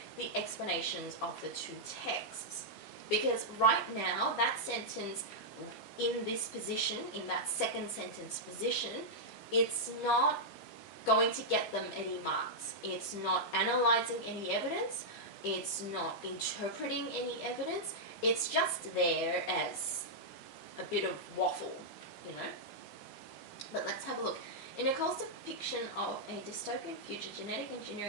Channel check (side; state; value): right; late; 15 ms